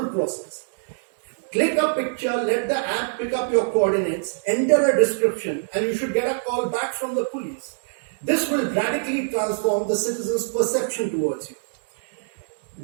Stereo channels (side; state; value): left; silent; digital silence